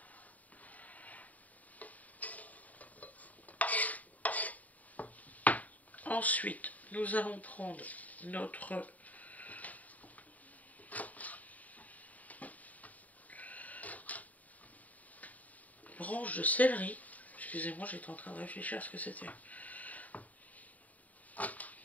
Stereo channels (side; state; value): right; late; 0.073 ms